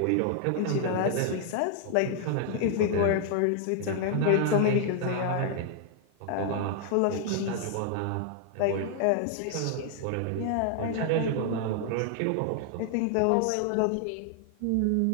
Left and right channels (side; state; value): both; different; correlation 0.00